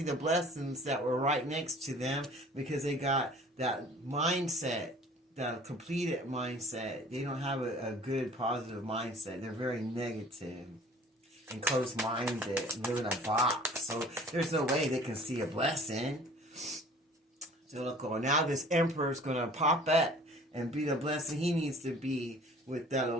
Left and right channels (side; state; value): both; normal; correlation 0.49